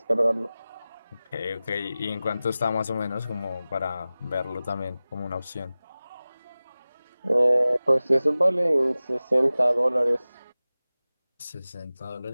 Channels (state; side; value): inverted; both; correlation -0.97